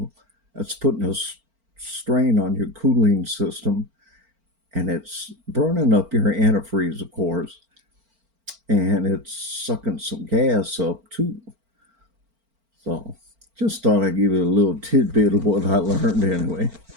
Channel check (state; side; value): late; left; 4.4 ms